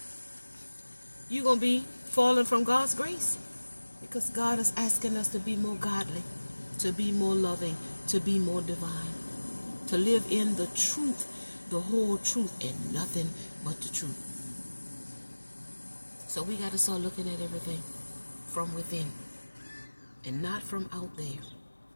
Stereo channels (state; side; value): inverted; both; correlation -1.00